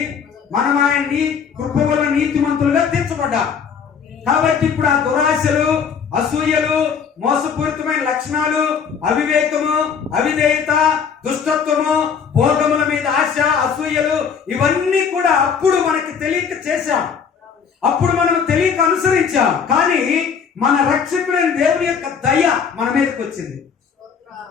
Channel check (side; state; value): right; quieter; 6.7 dB